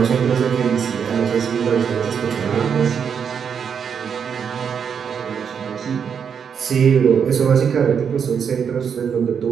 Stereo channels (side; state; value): left; quieter; 7.1 dB